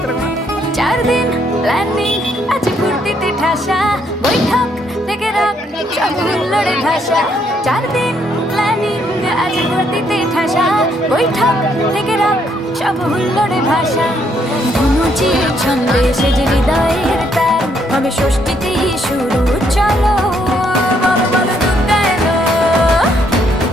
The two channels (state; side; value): normal; both; correlation 0.71